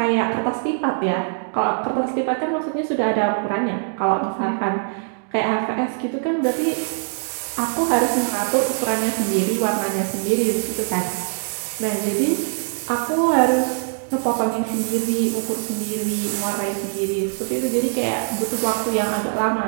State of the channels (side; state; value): left; silent; digital silence